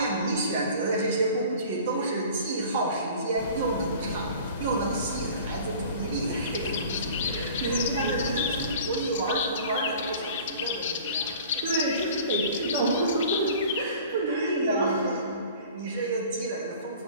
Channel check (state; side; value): inverted; both; correlation -0.44